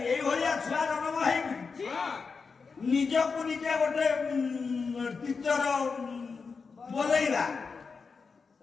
ନିଜକୁ ନିଜେ ଗୋଟେ ଟିଚର ବୋଲେଇବା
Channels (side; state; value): right; quieter; 5.0 dB